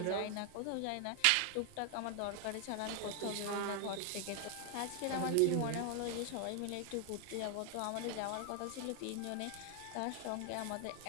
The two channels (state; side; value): different; both; correlation 0.00